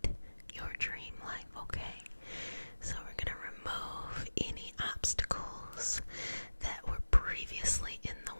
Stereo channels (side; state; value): both; inverted; correlation -1.00